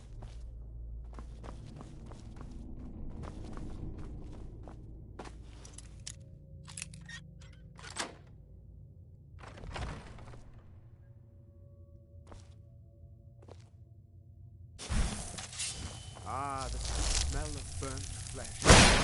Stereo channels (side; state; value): both; identical; correlation 1.00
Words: Ah, the sweet smell of burnt flesh.